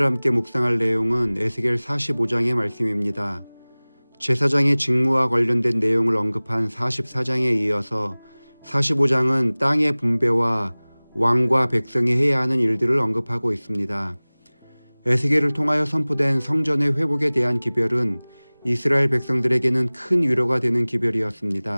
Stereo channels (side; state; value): both; inverted; correlation -1.00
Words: 함께 묵상할 내용은 에스겔 45장의 말씀입니다. 제사장의 직무와 관련된 내용을 언급한 44장에 이어서 45장은 땅의 분배와 왕과 백성이 해야 하는 일들을 언급하고 있습니다. 에스겔을 통하여 선포된 성전의 회복에 대한 기별은 이스라엘 백성들에게는 큰 위로가 되는